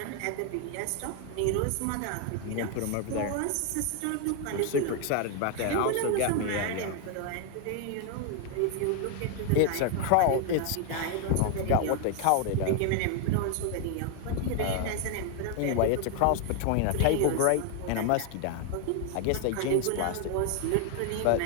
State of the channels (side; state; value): both; different; correlation 0.00